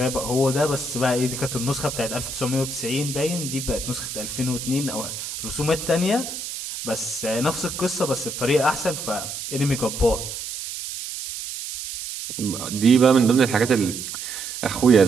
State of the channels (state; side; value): noise; right; hiss, 7 dB below the sound